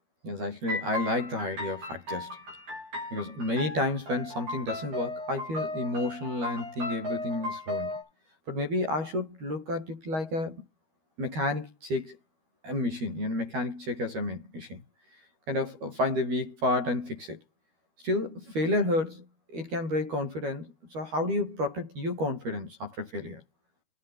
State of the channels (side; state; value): left; late; 13 ms